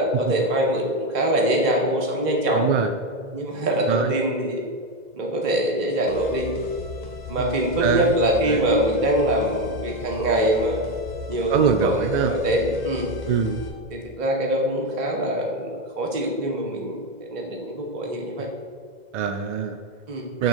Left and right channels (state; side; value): late; left; 2.0 ms